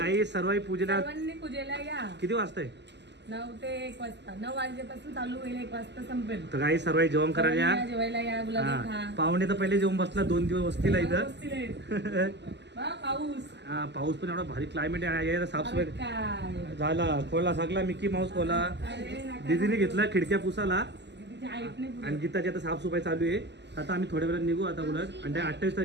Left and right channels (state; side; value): late; left; 0.50 ms